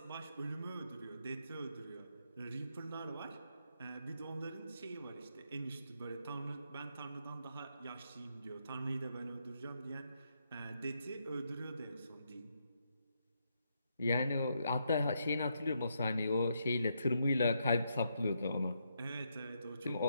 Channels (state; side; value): inverted; both; correlation -0.79